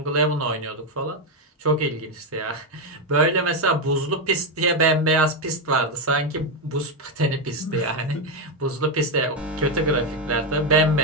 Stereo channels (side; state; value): both; normal; correlation 0.06